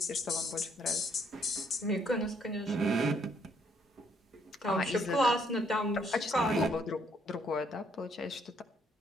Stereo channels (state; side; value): normal; both; correlation 0.69